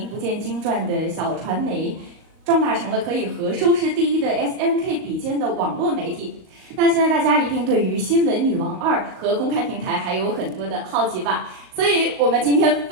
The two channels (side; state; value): left; late; 38 ms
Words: 不见经传的小传媒，壮大成了可以和收视第一的 SNK 比肩的网络媒体。那现在大家一定对于《新闻女王2》和公开平台还有很多的好奇吧？所以我们今天